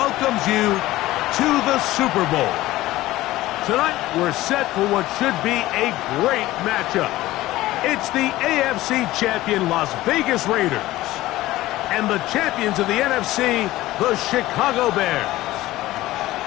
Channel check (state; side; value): quieter; right; 16.8 dB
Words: you to the Super Bowl. Tonight, we're set for what should be a great matchup. It's the AFC champion Las Vegas Raiders and the champions of the NFC, the Chicago Bears.